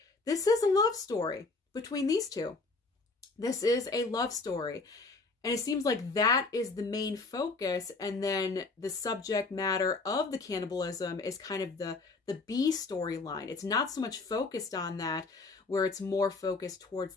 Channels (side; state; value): right; quieter; 3.7 dB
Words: this is a love story between these two. This is a love story. And it seems like that is the main focus. And then the subject matter of the cannibalism is kind of the B storyline. It's not so much focused on that, where it's more focused towards